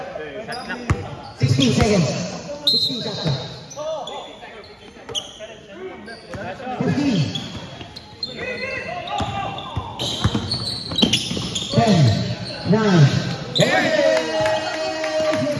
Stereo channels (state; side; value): identical; both; correlation 1.00